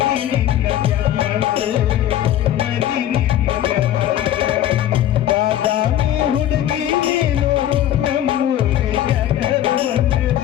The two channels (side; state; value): right; quieter; 12.0 dB